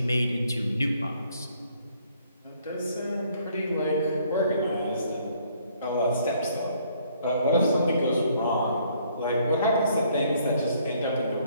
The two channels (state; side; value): inverted; both; correlation -0.65